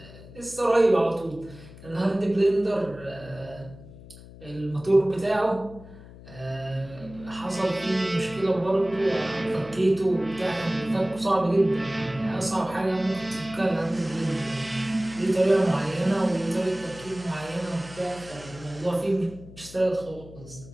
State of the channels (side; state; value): left; noise; hum, 18 dB below the sound